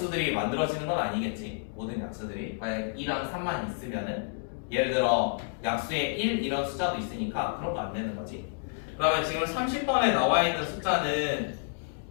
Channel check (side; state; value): right; silent; 58 dB below the other